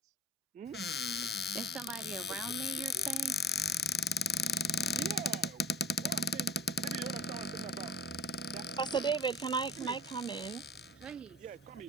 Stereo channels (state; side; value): normal; both; correlation 0.42